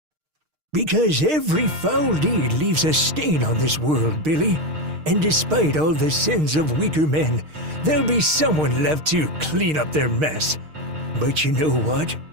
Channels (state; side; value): late; left; 6.5 ms